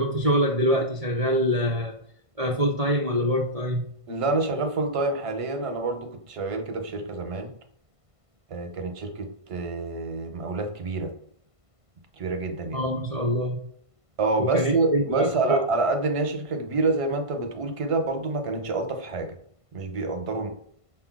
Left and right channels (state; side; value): late; left; 1.5 ms